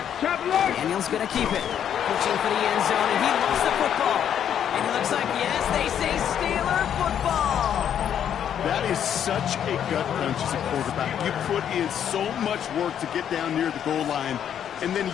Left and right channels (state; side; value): quieter; right; 9.3 dB